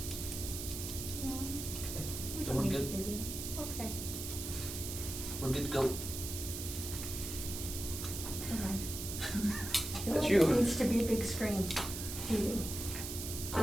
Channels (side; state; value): right; noise; hiss, 6 dB below the sound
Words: No, Okay. we Then don't we're need good. video. Okay. We're good to go. All right. I feel That's like you. It needs to be a big screen TV.